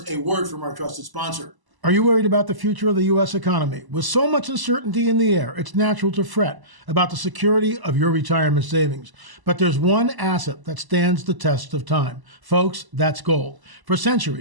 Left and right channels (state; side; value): late; left; 1.0 ms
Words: a word from our trusted sponsor. Are you worried about the future of the U.S. economy? With so much uncertainty in the air, it's natural to fret about the security of your retirement savings. But there's one asset that stands the test of time. Folks, that's gold. For